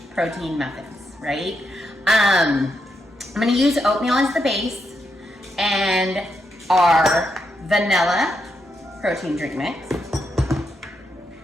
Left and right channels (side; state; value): both; normal; correlation 0.82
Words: protein muffins, right? I'm going to use oatmeal as the base and our vanilla protein drink mix,